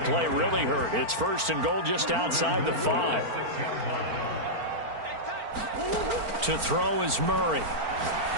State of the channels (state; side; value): late; left; 4.4 ms